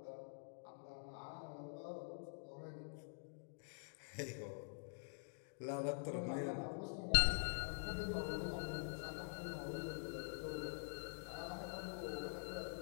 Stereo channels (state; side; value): silent; right; digital silence